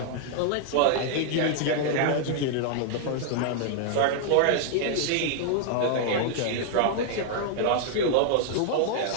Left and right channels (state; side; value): different; both; correlation -0.01